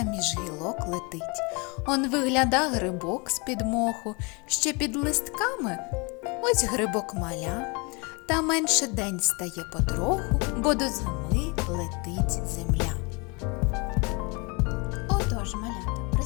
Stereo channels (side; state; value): right; quieter; 30.0 dB